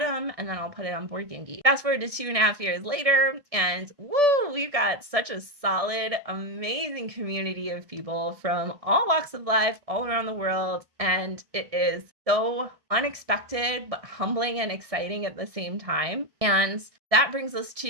and then I'll put it on Board Game Geek. Fast forward to 2.5 years later, and woo, we've got such a solid, amazing community of people from all walks of life, all around the world, and it is so unexpected, but humbling and exciting at the same time. And that brings us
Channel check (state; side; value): late; left; 1.6 ms